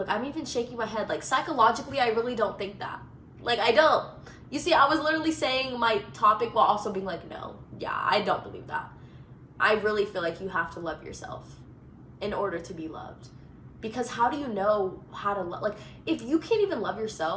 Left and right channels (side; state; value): both; identical; correlation 1.00